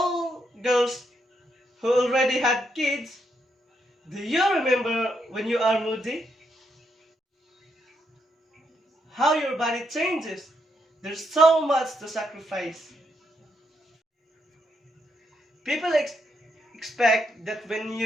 those who already had kids, do you remember when you are moody? How your body changes. There's so much to sacrifice. People expect that when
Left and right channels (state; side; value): normal; both; correlation 0.78